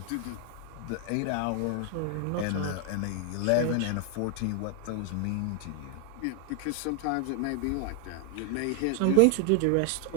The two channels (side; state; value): both; different; correlation 0.00